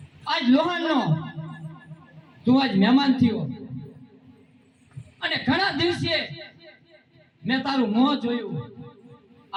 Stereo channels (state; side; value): identical; both; correlation 1.00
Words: આજ લોહાણનો તું આજ મહેમાન થયો અને ઘણા દિવસે મેં તારું મોં જોયું.